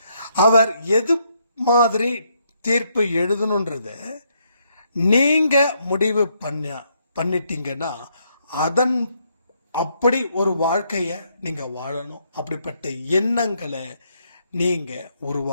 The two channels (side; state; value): both; inverted; correlation -0.74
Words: அவர் எது மாதிரி தீர்ப்பு எழுதணுன்றத நீங்க முடிவு பண்ணிட்டீங்கன்னா அதன் அப்படி ஒரு வாழ்க்கைய நீங்க வாழணும். அப்படிப்பட்ட எண்ணங்களை நீங்க